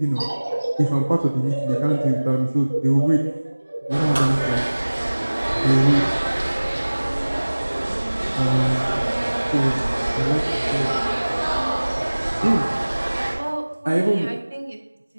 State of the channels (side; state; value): both; inverted; correlation -1.00